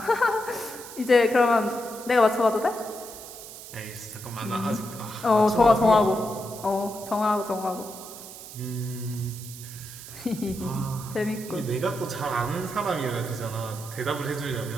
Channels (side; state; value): right; noise; hiss, 14 dB below the sound